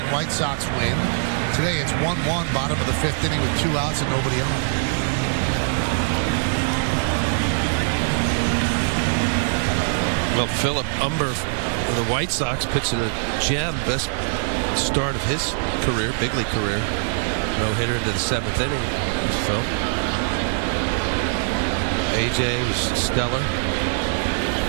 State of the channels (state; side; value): silent; left; digital silence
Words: White Sox win. Today, it's 1-1, bottom of the 5th inning with 2 outs and nobody on. Well, Philip Umber with the White Sox pitching a gem, best start of his career, big league career. No hitter into the 7th inning. There's Phil. AJ was stellar.